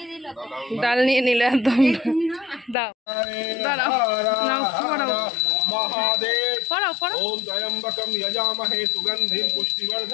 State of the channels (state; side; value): drops out; right; at 2.8 s